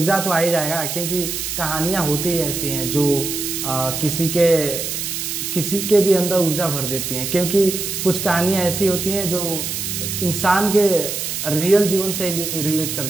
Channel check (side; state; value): right; noise; hiss, 4 dB below the sound